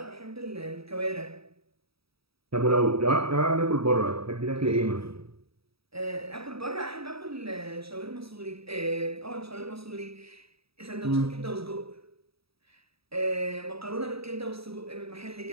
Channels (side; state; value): left; late; 0.77 ms